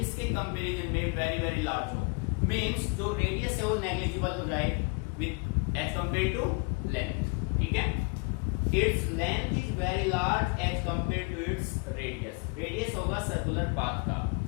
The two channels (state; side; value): quieter; right; 32.0 dB